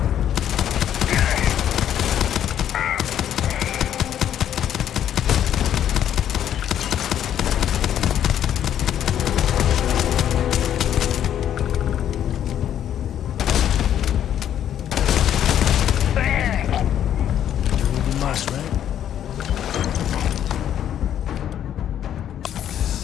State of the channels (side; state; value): right; quieter; 10.3 dB